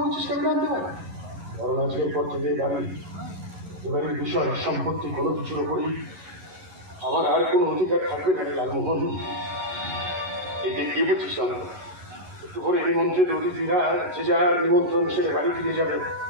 কেন জানতে পারি? কারণ আজকের পর থেকে এবারের বিষয় সম্পত্তি কোনো কিছুর উপরই আমার আর কোনো অধিকার থাকবে না রে লালমোহন। এতে কি বলছিস আমরা? একটু করে নিমন্ত্রিত অতিথিরা যে যার নিমন্ত্রণ সেরে বাড়ি ফিরে যাবে,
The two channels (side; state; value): left; late; 11 ms